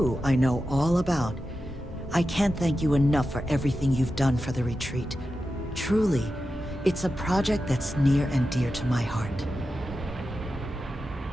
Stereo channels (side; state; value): both; normal; correlation 0.91